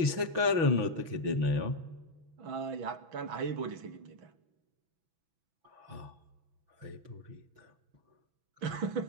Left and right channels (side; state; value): left; late; 6.1 ms